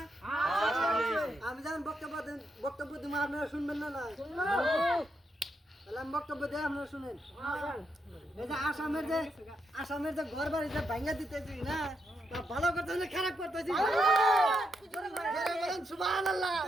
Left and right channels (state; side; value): normal; both; correlation 0.81